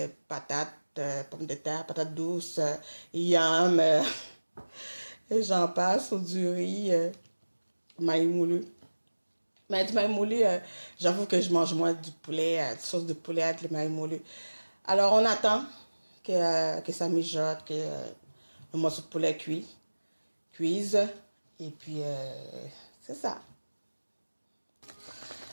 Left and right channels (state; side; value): inverted; both; correlation -1.00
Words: Patates, pommes de terre, patates douces, yam, et j'en passe, ou du riz, maïs moulu. Mais du maïs moulu, j'avoue que je mange moins du poulet, sauce de poulet avec le maïs moulu. Alors, on attend que ça mijote, que le morceau de poulet cuise. Et puis, c'est ça.